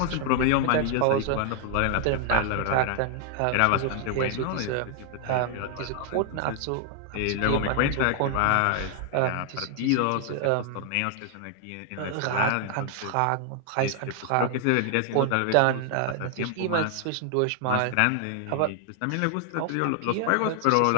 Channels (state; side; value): different; both; correlation 0.00